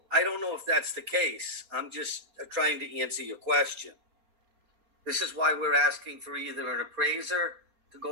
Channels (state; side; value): late; left; 4.3 ms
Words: I don't know if that's the case. I'm just trying to answer your question. This is why we're asking for either an appraiser to